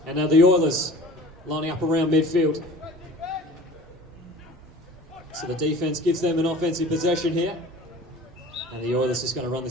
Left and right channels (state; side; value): normal; both; correlation 0.43